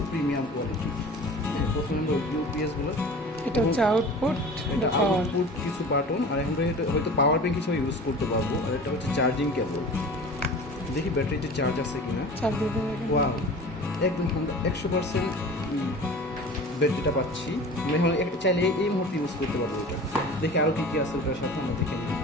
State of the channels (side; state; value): both; normal; correlation 0.39